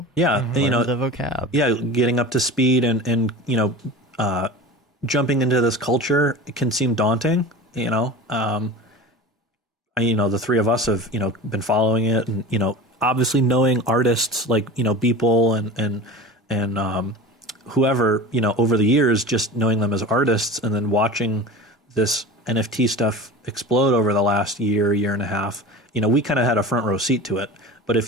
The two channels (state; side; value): normal; both; correlation 0.34